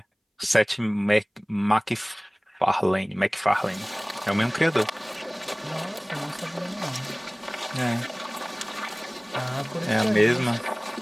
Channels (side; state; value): both; identical; correlation 1.00